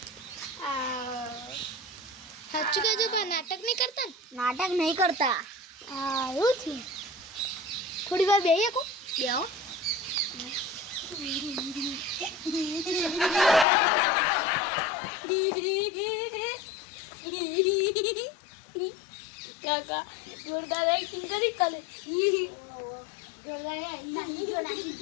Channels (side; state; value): right; drops out; at 13.7 s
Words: સાચું કહેજો પણ નાટક નહીં કરતા ને? નાટક નહીં કરતા. હા એવું થયું. થોડી વાર બેહીએ કો બેહો. કાકા જોરદાર એક્ટિંગ કરી કાલે